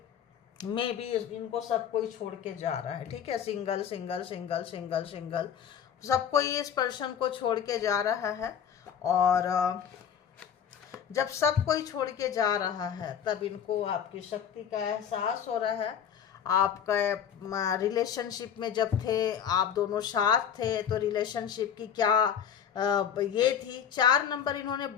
मे भी इनको सब कोई छोड़ के जा रहा है, ठीक है। Single single single single single सब कोई इस पर्सन को छोड़ के जा रहा है। और जब सब कोई छोड़ के जा रहा है तब इनको आपकी शक्ति का एहसास हो रहा है। आपका रिलेशनशिप में जब थे, आप दोनों साथ थे, तो रिलेशनशिप की क्या ये थी। 4 नंबर इन्होंने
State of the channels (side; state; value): right; quieter; 8.6 dB